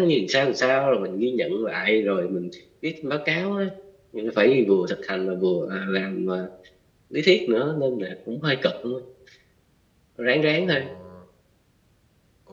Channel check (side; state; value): both; identical; correlation 1.00